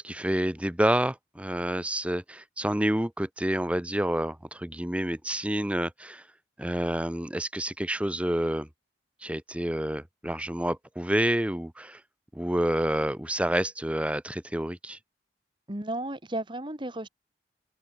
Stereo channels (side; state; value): both; normal; correlation 0.87